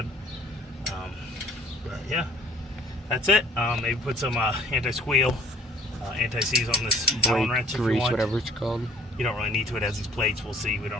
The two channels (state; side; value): normal; both; correlation 0.55